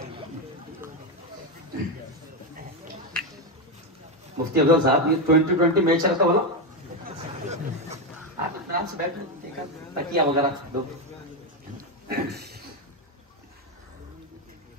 मुफ्ती अफजल साहब, ये 2020 मैच रखा वाला आप आराम से बैठो, देखा तकिया वगैरह दो।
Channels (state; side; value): normal; both; correlation 0.08